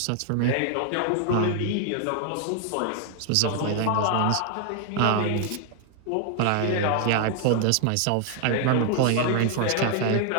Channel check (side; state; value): both; different; correlation 0.00